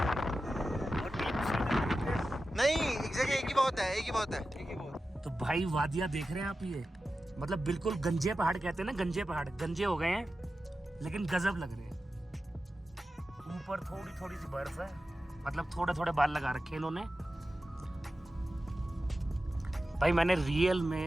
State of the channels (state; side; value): normal; both; correlation 0.93